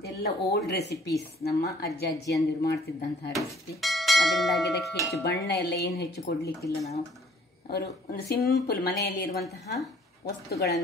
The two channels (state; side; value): normal; both; correlation 0.56